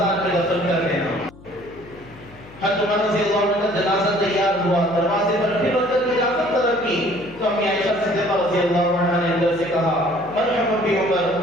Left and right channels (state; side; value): noise; left; hum, 22 dB below the sound